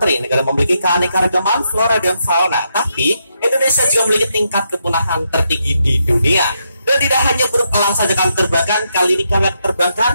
negara memiliki keanekaragaman flora dan fauna. Tapi Indonesia juga memiliki tingkat kepunahan tertinggi di dunia. Dan tidak hanya burung elang saja kami terbangkan, kali ini kami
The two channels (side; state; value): both; inverted; correlation -0.80